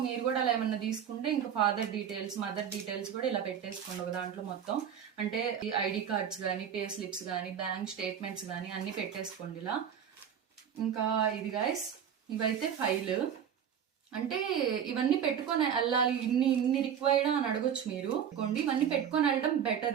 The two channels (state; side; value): quieter; left; 8.5 dB